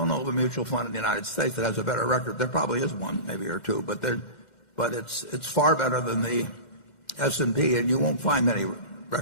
know of a mutual fund in the United States that has a better record. There probably is one, maybe or two, but it's far better than the S&P, and you won't find many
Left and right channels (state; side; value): late; right; 1.4 ms